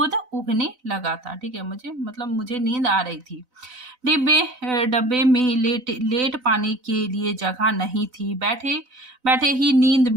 उगने लगा था। ठीक है, मुझे नींद आ रही थी। डब्बे में लेट पाने के लिए जगह नहीं थी। बैठे बैठे ही नींद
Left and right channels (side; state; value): left; late; 4.0 ms